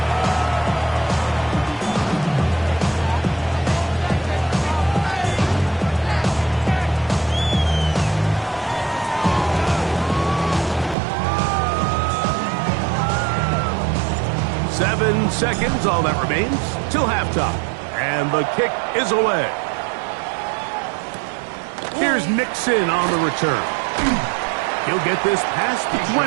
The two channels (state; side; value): drops out; left; at 11.0 s